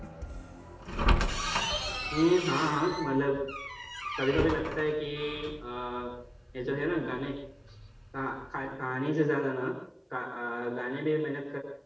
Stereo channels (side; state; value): both; identical; correlation 1.00